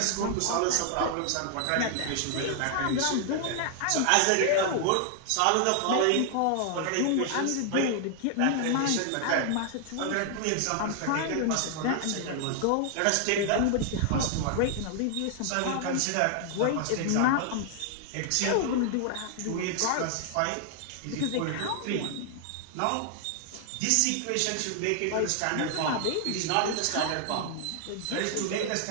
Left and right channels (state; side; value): different; both; correlation 0.00